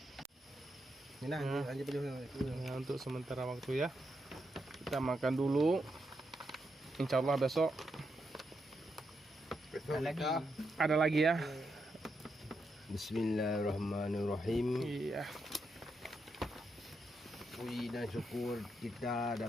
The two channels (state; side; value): normal; both; correlation 0.82